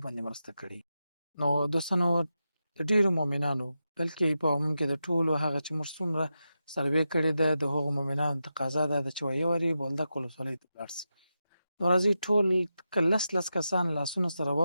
باندې مرسته کړي. نو دوستانو د ډېرو مؤمنانو بلکې په عموم کې د ټولو هغه چې موږ څومره سروې کړې ده د هغو مؤمنانو تقاضا دا ده چې ویې واري بولدک ولسوالۍ ته ولاړ سي. نو راځئ ټول که لس کسان لاسونه سره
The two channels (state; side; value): inverted; both; correlation -0.89